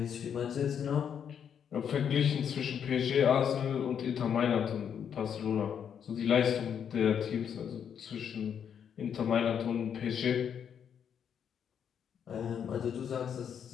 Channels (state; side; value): quieter; right; 8.1 dB